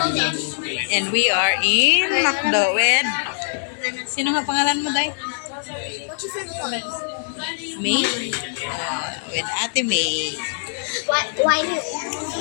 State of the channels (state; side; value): silent; right; digital silence